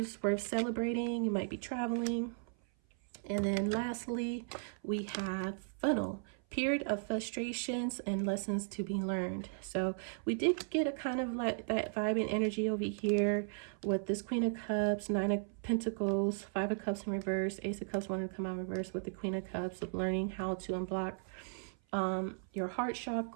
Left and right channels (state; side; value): silent; left; 54 dB below the other